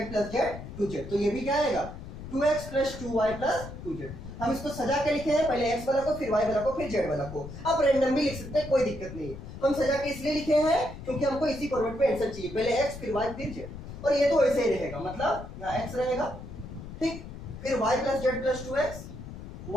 प्लस z 2z। तो ये भी क्या आएगा 2x plus 2y plus 2z। हम इसको सजा के लिखे हैं, पहले x वाला को, फिर y वाला को, फिर z वाला को। आप रैंडम भी लिख सकते हैं, कोई दिक्कत नहीं है। हम सजा के इसलिए लिखे हैं क्योंकि हमको इसी फॉर्मेट पे आंसर चाहिए, पहले x फिर y फिर z। और ये तो ऐसे ही रहेगा, मतलब यहाँ x रहेगा, ठीक, फिर y plus z plus 2x,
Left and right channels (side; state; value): left; noise; rumble, 11 dB below the sound